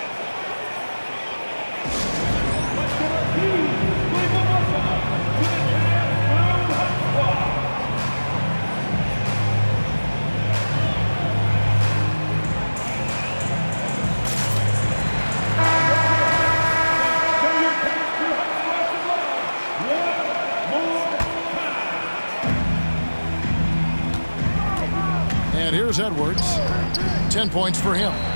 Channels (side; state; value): both; inverted; correlation -1.00